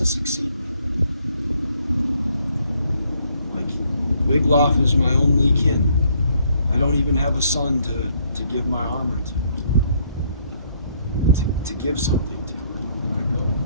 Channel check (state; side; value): inverted; both; correlation -0.68